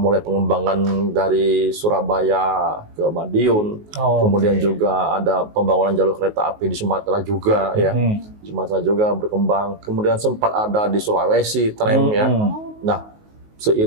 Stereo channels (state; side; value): late; left; 19 ms